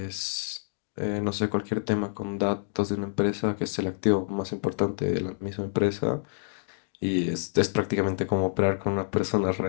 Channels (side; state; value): right; silent; digital silence